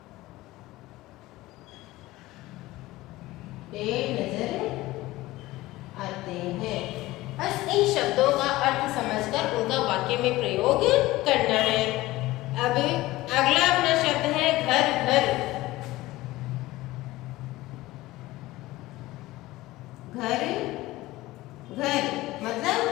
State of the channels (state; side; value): quieter; right; 18.1 dB